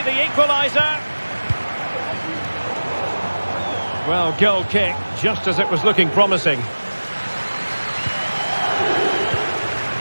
the equaliser. Well, goal kick, just as it was looking promising.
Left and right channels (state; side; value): inverted; both; correlation -1.00